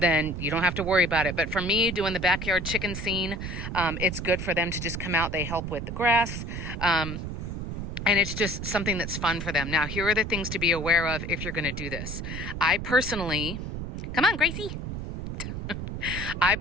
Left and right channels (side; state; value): right; noise; rumble, 5 dB below the sound